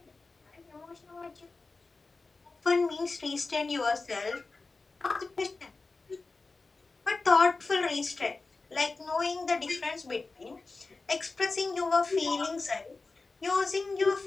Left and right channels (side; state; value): right; quieter; 3.8 dB